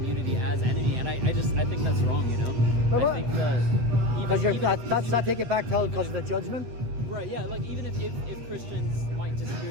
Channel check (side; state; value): left; late; 8.4 ms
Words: as enemy, and I think that's wrong. But I think that that take it back because of the judgment. Right, yeah, like even if Christians might disagree